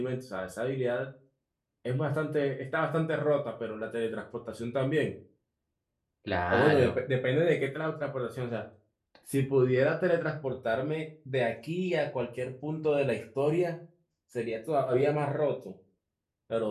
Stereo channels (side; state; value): both; identical; correlation 1.00